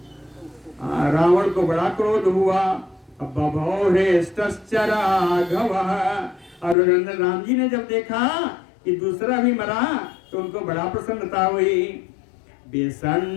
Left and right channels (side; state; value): right; drops out; at 6.8 s